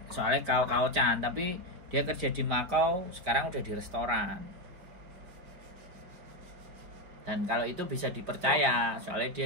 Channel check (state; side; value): late; left; 4.9 ms